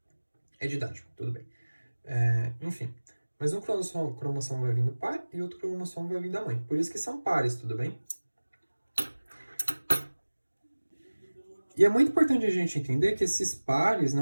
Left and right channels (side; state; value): both; inverted; correlation -1.00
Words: É didático, tudo bem. Enfim, mas um cromossomo vai vir do pai e outro cromossomo vai vir da mãe. Por isso que são pares, tudo bem? E é muito importante a gente entender que esses pares,